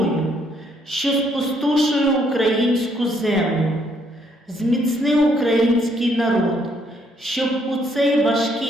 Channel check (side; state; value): both; normal; correlation 0.70